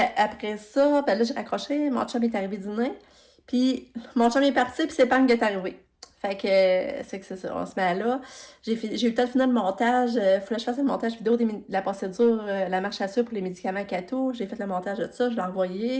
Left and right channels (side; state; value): both; identical; correlation 1.00